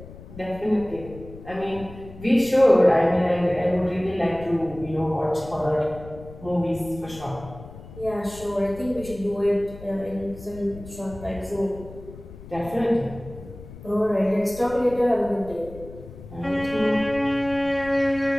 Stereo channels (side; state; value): left; noise; rumble, 16 dB below the sound